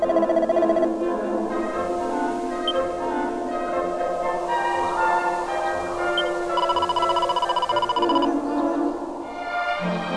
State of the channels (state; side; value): identical; both; correlation 1.00